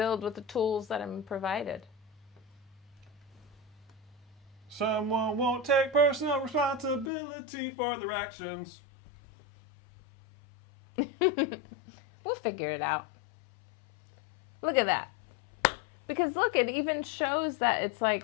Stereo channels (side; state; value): right; drops out; at 7.1 s